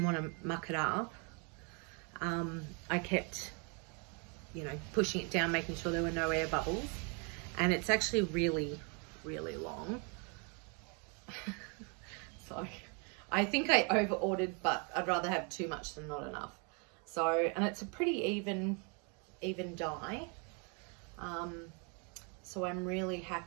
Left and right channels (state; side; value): quieter; left; 35.3 dB